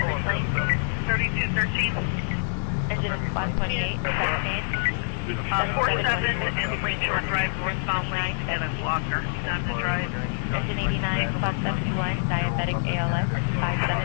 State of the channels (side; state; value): right; silent; 61 dB below the other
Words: of 3213. engine 128, 47 and Lakeshore Drive, northbound lane, and a blocker. He's on the drive. engine 89, plus 71, diabetic ALS,